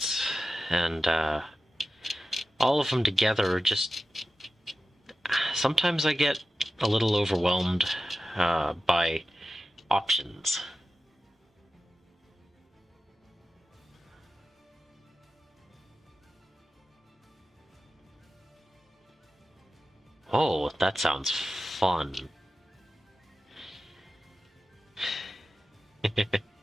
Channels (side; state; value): both; normal; correlation 0.93